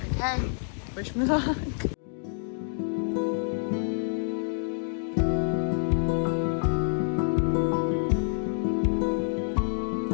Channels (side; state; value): right; silent; digital silence